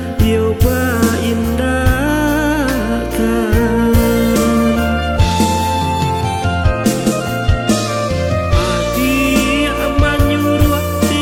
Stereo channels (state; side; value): identical; both; correlation 1.00